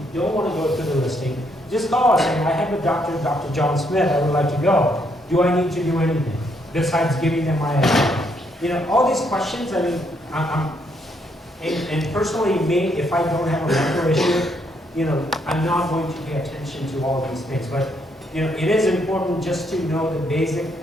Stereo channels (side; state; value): both; normal; correlation 0.73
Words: don't want to go to the listing, just call us and I have a doctor, Dr. John Smith, I would like to go. Do I need to do anything besides giving them my address? You know, all these questions, I mean, and personally me, if I don't have a medical issue, you know, I'm not going to pay attention to all these things. But, you know, it is important just to know the basic